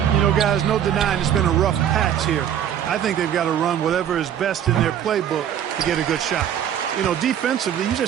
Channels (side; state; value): left; quieter; 9.8 dB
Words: You know, guys, no denying it's been a rough patch here. I think they've got to run whatever is best in their playbook to get a good shot. You know, defensively, you